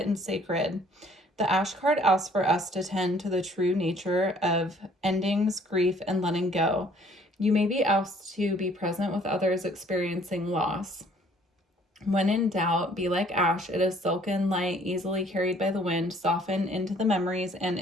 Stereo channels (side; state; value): both; normal; correlation 0.59